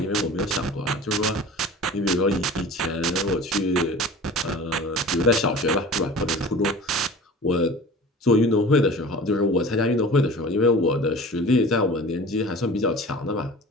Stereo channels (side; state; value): both; normal; correlation 0.40